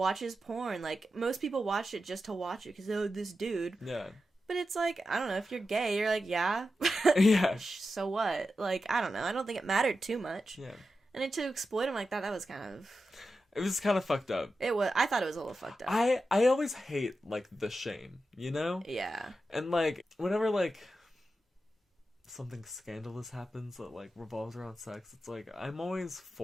porn. Like, most people watch it just to watch it because, oh, this dude. Yeah. But it's like, I don't know, if you're gay, you're like, yeah. Yeah. So what? Like, I don't know. I don't think it mattered too much. Yeah. And then to exploit him like that was kind of... It was kind of fucked up. It was. I thought it was a little fucked up. I always hate, like, the shame, you know? Yeah. And, like, whenever, like, something scandalous happens that, like, revolves around sex, it's like, I'm always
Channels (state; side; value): normal; both; correlation 0.90